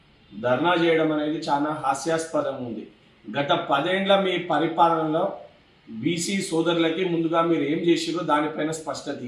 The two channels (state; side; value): identical; both; correlation 1.00